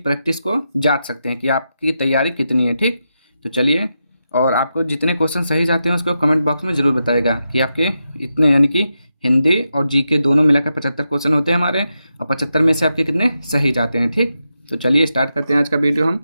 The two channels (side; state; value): both; inverted; correlation -0.87